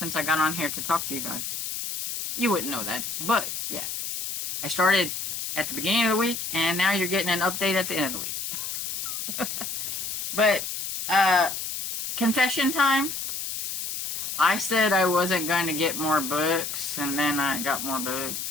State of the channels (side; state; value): left; noise; hiss, 4 dB below the sound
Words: I got on here to talk to you guys. You wouldn't know that, but yeah, I started at the beginning of the week, and now you're getting an update at the end of the week. But confession time. I said I wasn't going to get more books, and then I got more